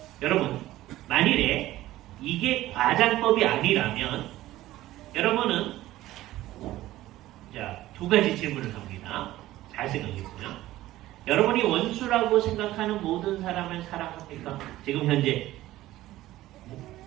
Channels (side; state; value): left; quieter; 15.6 dB